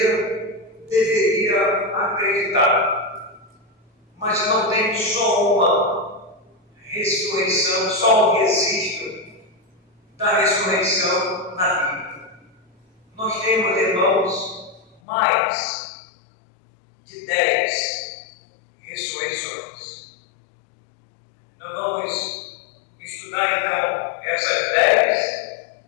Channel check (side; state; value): right; drops out; at 15.0 s